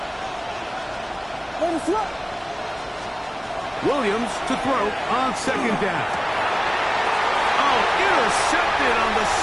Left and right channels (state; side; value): identical; both; correlation 1.00